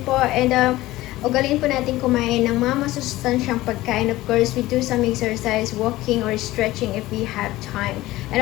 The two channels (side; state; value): right; quieter; 17.4 dB